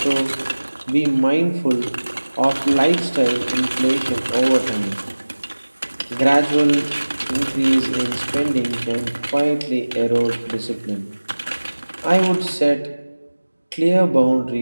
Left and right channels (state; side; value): inverted; both; correlation -1.00